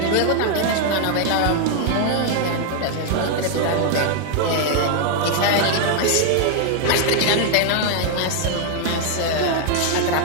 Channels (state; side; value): different; both; correlation 0.00